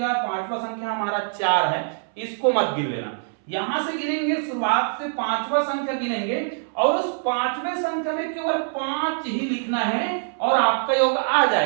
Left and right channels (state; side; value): silent; left; 63 dB below the other